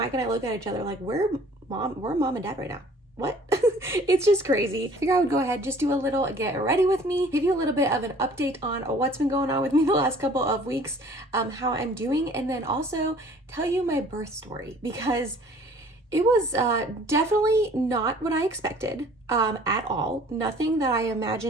and I look at each other like we're mom and dad right now. What? It's just crazy. I figure I would go ahead, just do a little get ready with me, give you a little bit of an update on what's been going on with me the last couple of weeks, how I'm doing, and then also tell you my birth story because it was definitely not what I expected at all. Nothing that I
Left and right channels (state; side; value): normal; both; correlation 0.52